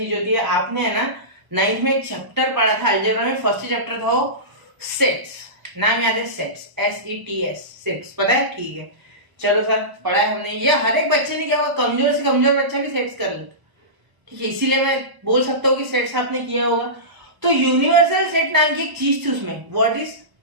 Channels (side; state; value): left; late; 1.0 ms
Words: होती है। आपने है ना 9th में एक चैप्टर पढ़ा था अलजेब्रा में, फर्स्ट चैप्टर था वो सेट्स, नाम याद है सेट्स, SETS, सेट्स, पता है, ठीक है। चलो सर पढ़ा है हमने, ये हर एक बच्चे ने क्या होगा, कमजोर से कमजोर बच्चा भी सेट्स कर लेता, ठीक है। इसीलिए मैं बोल सकता हूँ कि सेट्स आपने किया होगा। तो यूनिवर्सल सेट नाम की एक चीज थी उसमें, व्हाट इज